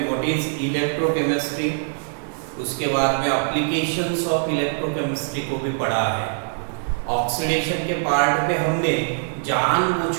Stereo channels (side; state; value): left; silent; 64 dB below the other